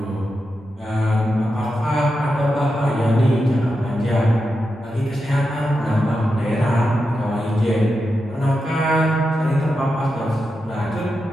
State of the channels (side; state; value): both; normal; correlation 0.88